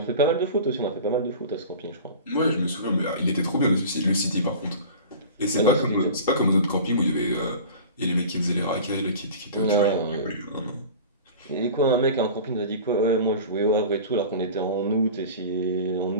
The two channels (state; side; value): inverted; both; correlation -0.38